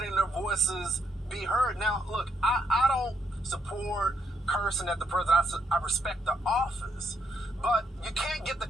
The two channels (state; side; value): normal; both; correlation 0.76